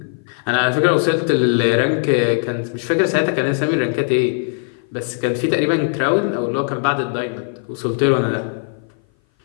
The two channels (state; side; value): silent; right; 58 dB below the other